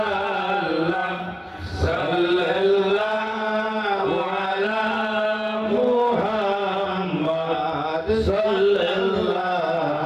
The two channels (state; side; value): identical; both; correlation 1.00